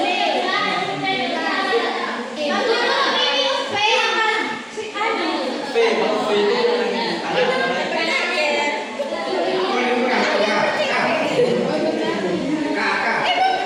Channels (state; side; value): identical; both; correlation 1.00